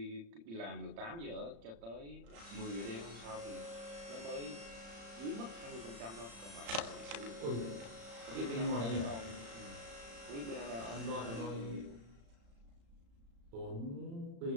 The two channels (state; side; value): late; left; 35 ms